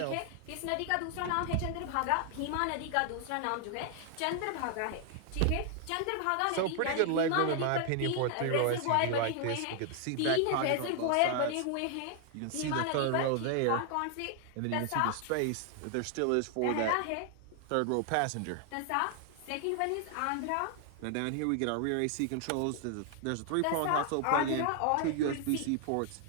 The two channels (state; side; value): different; both; correlation 0.00